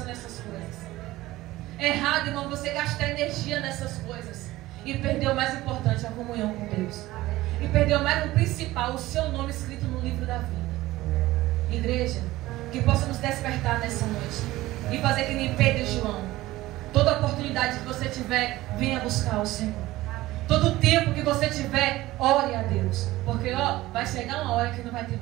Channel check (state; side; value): quieter; left; 17.3 dB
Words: nessas coisas. Errado, irmão, você gastar energia nessas coisas. E perder o mais importante, a comunhão com Deus. E perder o mais o principal, o seu nome escrito no livro da vida. Igreja, que possa nos despertar nessa noite. E fazer que nem Pedro e João. Toda oportunidade que você tiver, venha buscar o Senhor. Todo tempo que você tiver, ore a Deus. Porque, vai chegar uma hora que não vai ter